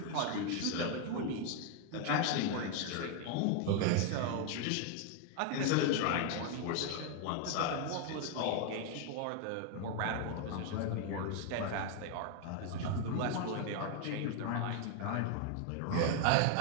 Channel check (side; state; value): both; different; correlation 0.00